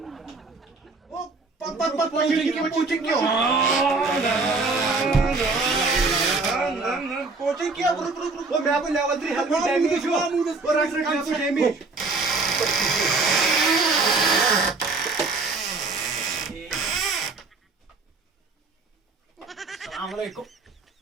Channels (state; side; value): quieter; left; 3.8 dB